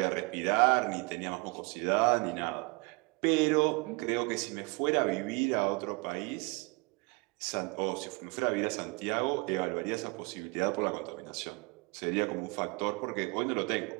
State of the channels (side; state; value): left; quieter; 28.7 dB